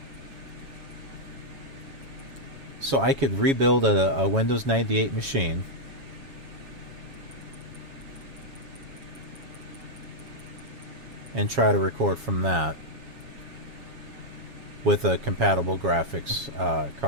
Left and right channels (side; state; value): left; late; 7.3 ms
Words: So I could rebuild a Windows 98 machine. And try to record from that with a compatible graphics